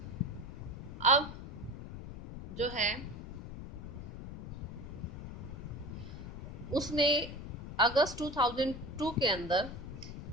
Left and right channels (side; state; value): left; noise; rumble, 9 dB below the sound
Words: अब जो है उसने अगस्त 2002 के अंदर